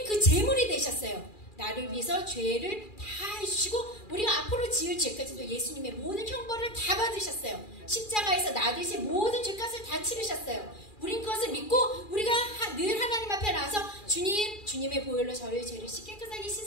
그 제물이 되셨어요. 나를 위해서 죄를 다 해주시고 우리가 앞으로 지을 죄까지도 예수님의 모든 형벌을 다 받으셨어요. 십자가에서 나 대신 모든 죄값을 다 치르셨어요. 우린 그것을 믿고 우리가 늘 하나님 앞에 나와서 주님의 보혈로 저의 죄를 깨끗하게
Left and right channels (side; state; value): right; late; 2.4 ms